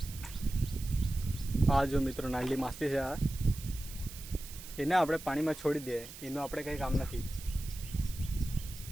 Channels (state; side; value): noise; right; hiss, 14 dB below the sound